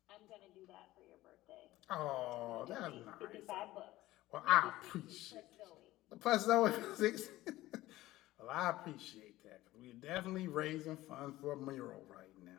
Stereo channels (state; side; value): quieter; right; 16.8 dB